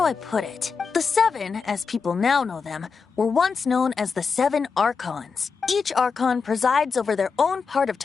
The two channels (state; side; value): quieter; right; 5.3 dB